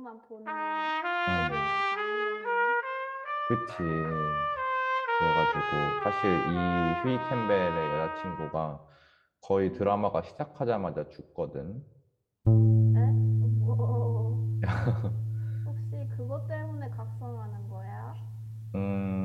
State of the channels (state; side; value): identical; both; correlation 1.00